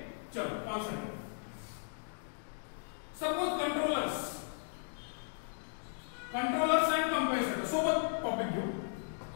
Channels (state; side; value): silent; right; digital silence